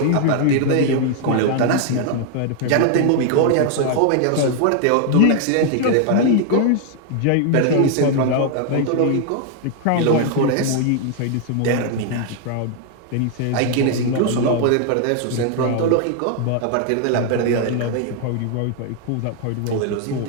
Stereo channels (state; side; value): different; both; correlation 0.00